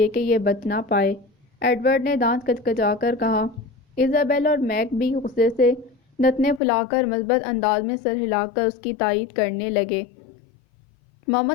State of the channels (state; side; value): drops out; right; at 6.6 s